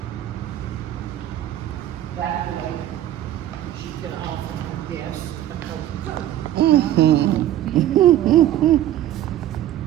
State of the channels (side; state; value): left; quieter; 12.6 dB